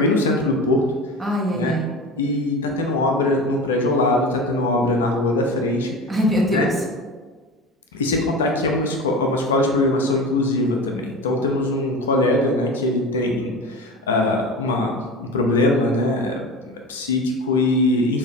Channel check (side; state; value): both; normal; correlation 0.31